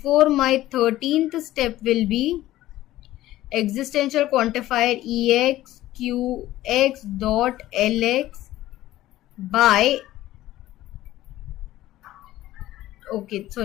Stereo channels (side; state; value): right; quieter; 15.2 dB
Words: my 13th step will be existential quantifier EX QX dot LX by